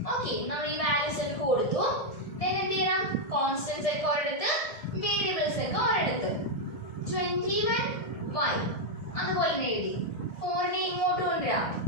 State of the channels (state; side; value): late; right; 1.7 ms